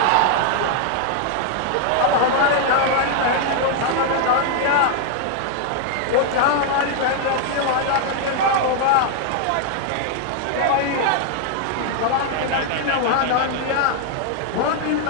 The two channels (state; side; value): different; both; correlation 0.00